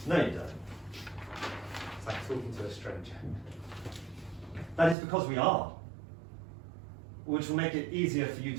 No, you don't. It's like talking to a stranger. That is because we are. Which will make it easier for you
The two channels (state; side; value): drops out; left; at 5.0 s